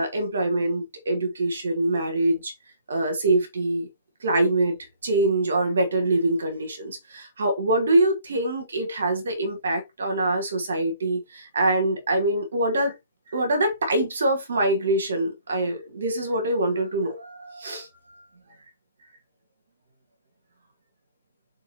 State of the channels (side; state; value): both; inverted; correlation -0.63